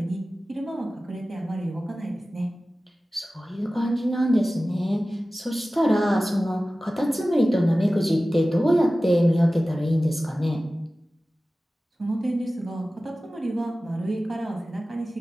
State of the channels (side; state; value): both; normal; correlation 0.96